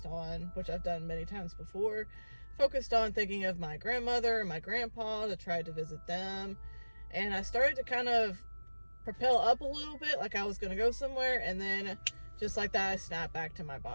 on, which I've done many times before, focused on thinking of my grandmother and my grandpa to try to visit them. And I started to kind of propel up a little bit, like I was going to go somewhere, and then just like that, I snapped back to my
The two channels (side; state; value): both; inverted; correlation -1.00